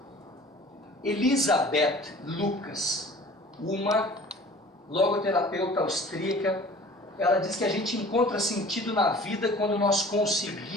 Elisabeth Lucas, uma logoterapeuta austríaca, ela diz que a gente encontra sentido na vida quando nós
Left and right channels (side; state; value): both; normal; correlation 0.46